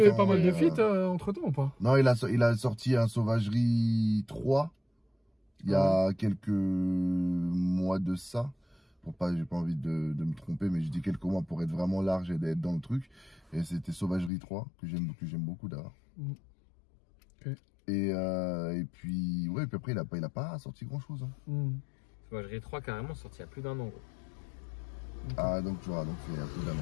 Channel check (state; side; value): drops out; right; at 14.3 s